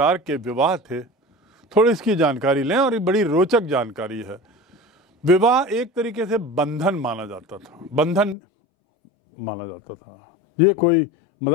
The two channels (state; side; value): drops out; right; at 8.3 s